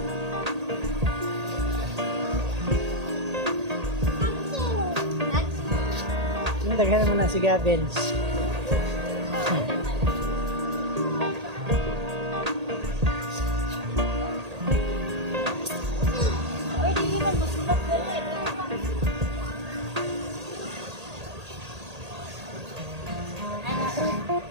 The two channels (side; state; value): left; late; 1.8 ms